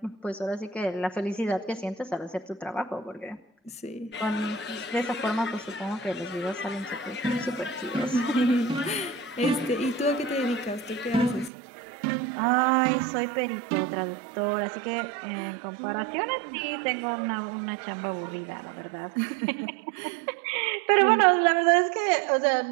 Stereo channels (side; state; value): left; drops out; at 11.5 s